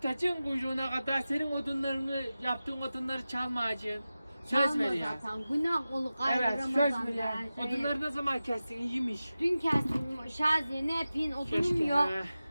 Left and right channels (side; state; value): both; inverted; correlation -0.95